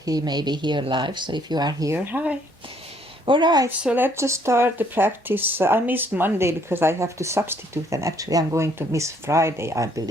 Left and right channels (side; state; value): both; normal; correlation 0.66